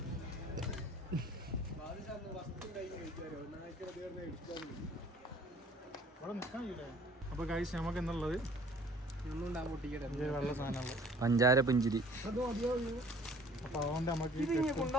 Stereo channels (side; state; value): both; normal; correlation 0.53